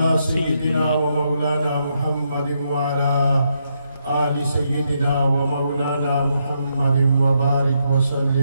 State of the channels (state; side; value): inverted; both; correlation -0.79